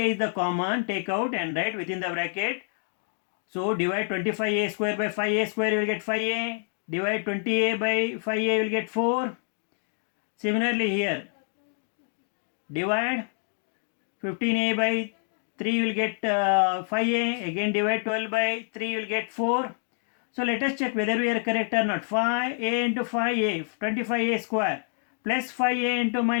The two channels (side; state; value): right; silent; 60 dB below the other